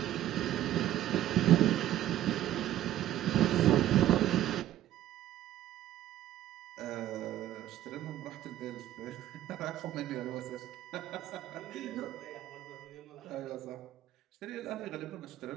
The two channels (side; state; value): left; quieter; 13.1 dB